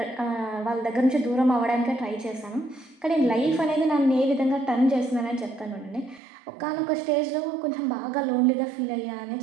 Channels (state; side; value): drops out; left; at 6.2 s